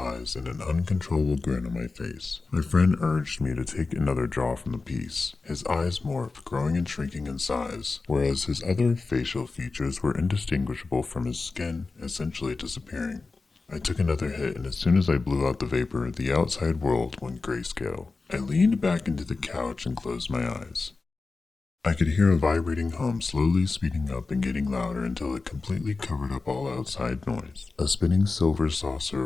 and an uncontrollable grin on my face. My friend urged me to take another draw from the piece. His eyes morphed, growing and shrinking in size, whereas his other facial features were indistinguishable from his skin, essentially disappearing. I took another hit, and as soon as I blew out the vapor, the outside world went grayscale. I leaned back into the couch and closed my eyes. I could hear a vibrating hum slowly speeding up and getting louder until it completely covered up all outside noise. A spinning silver saucer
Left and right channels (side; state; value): right; quieter; 3.9 dB